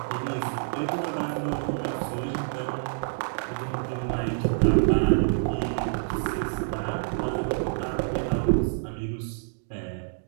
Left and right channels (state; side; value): silent; left; digital silence